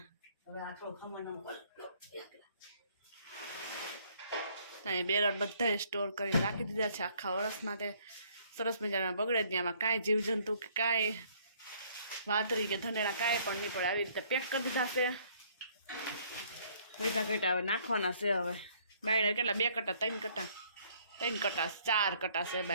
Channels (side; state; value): both; inverted; correlation -0.62